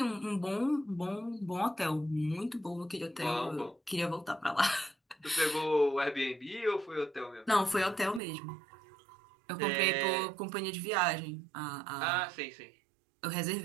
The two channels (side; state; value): left; drops out; at 8.2 s